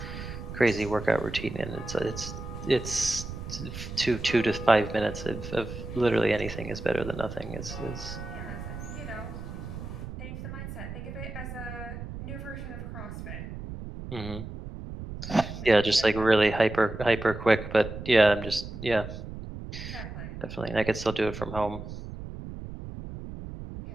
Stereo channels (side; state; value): right; noise; rumble, 9 dB below the sound